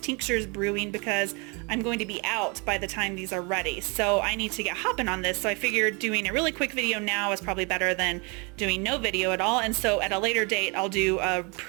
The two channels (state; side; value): quieter; left; 31.1 dB